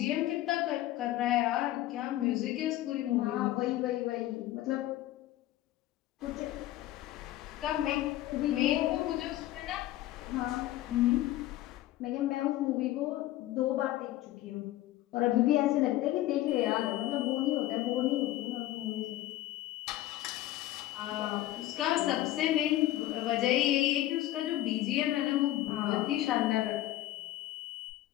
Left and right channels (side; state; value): right; quieter; 14.9 dB